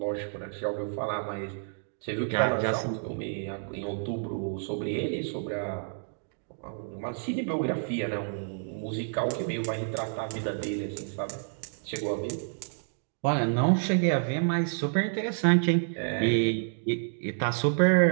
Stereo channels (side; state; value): left; silent; digital silence